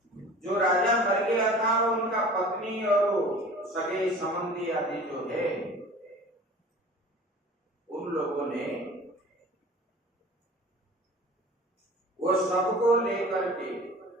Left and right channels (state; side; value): normal; both; correlation 0.43